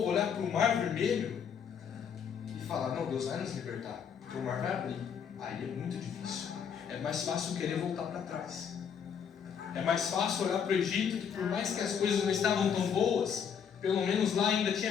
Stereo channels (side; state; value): right; quieter; 7.4 dB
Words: olhar para o Mar Vermelho e falar, não, Deus vai nos libertar, porque o mar vai abrir. Aí é muito difícil. É mais fácil querer voltar para trás. É mais fácil olhar para o Egito, que por mais que as coisas não estavam tão boas, pelo menos lá ainda